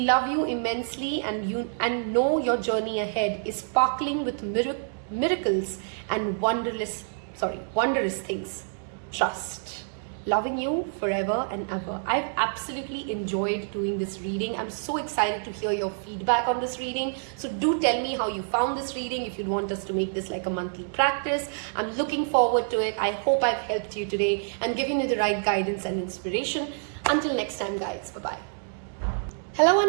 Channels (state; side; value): silent; left; digital silence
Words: love you immensely, and know your journey ahead is sparkling with miracles and wondrous things. Trust. Loving you forever and ever. I've absolutely enjoyed doing this reading. I'm so excited to hear your feedback on this reading. So do tell me how you found this reading, if you'd want us to make this like a monthly practice. I'm looking forward to it. I hope I've helped you today and given you the right guidance and inspiration. Until next time, guys. Bye-bye. Hello